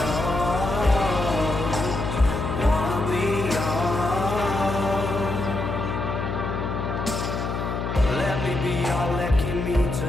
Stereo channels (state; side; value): noise; left; hum, 3 dB below the sound